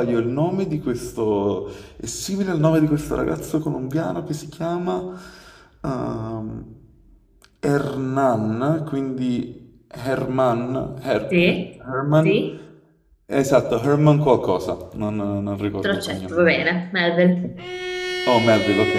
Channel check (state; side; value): identical; both; correlation 1.00